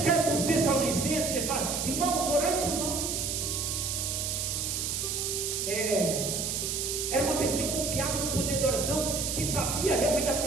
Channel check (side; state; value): right; noise; hiss, 1 dB below the sound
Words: para os Tessalonicenses e fala: irmãos, orai por nós. Era uma pessoa confiável no poder da oração e que sabia realmente da